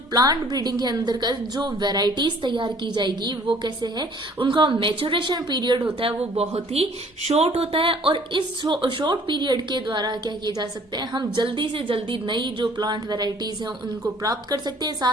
प्लांट ब्रीडिंग के अंदर का जो वेराइटीज तैयार की जाएगी वो कैसे है, उनका मैच्योरेशन पीरियड होता है वो बहुत ही शॉर्ट होता है और इस शॉर्ट पीरियड के द्वारा क्या किया जा सकता है, हम जल्दी से जल्दी नई जो प्लांट वेराइटीज है उनको प्राप्त कर सकते हैं।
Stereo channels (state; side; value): normal; both; correlation 0.55